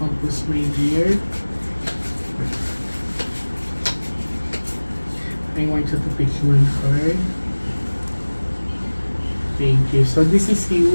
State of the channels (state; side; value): inverted; both; correlation -1.00